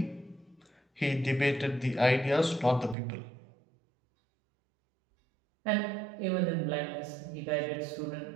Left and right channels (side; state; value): left; drops out; at 3.0 s